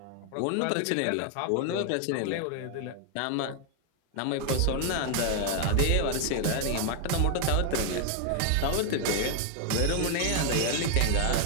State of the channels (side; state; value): both; different; correlation 0.00